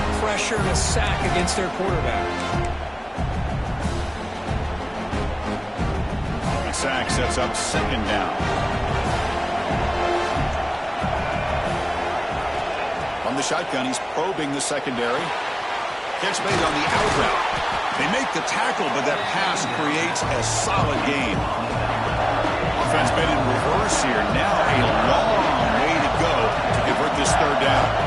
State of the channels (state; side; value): identical; both; correlation 1.00